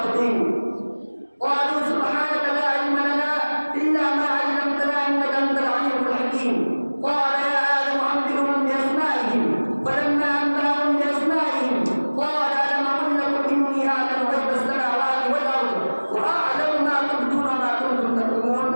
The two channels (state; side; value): inverted; both; correlation -1.00